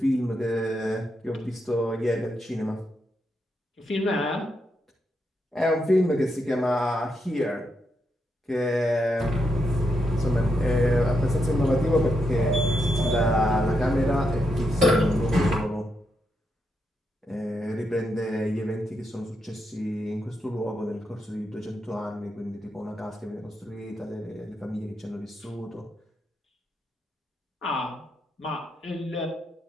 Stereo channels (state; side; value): normal; both; correlation 0.82